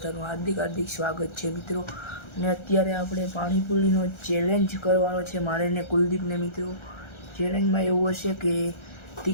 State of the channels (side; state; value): right; late; 1.4 ms